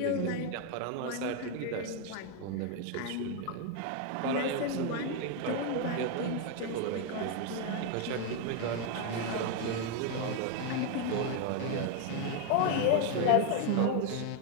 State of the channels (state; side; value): different; both; correlation 0.01